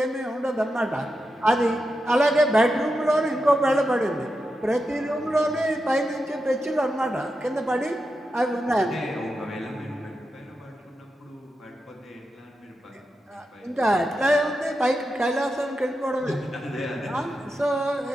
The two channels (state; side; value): normal; both; correlation 0.88